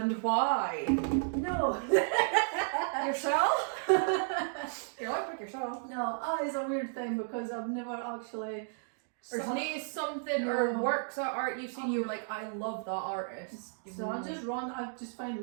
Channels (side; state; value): left; silent; digital silence